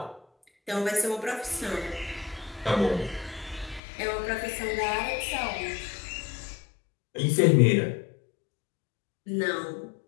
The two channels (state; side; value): drops out; right; at 3.8 s